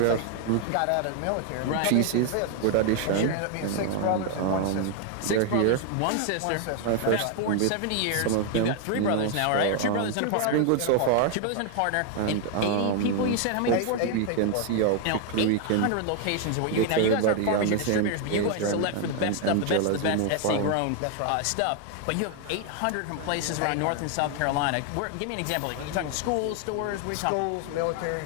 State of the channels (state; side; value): different; both; correlation 0.00